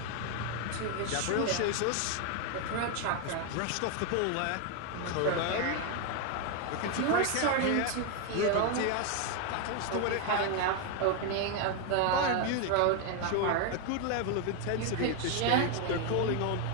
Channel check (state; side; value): different; both; correlation 0.01